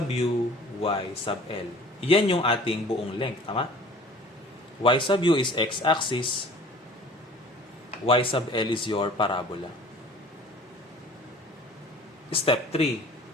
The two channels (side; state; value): both; normal; correlation 0.47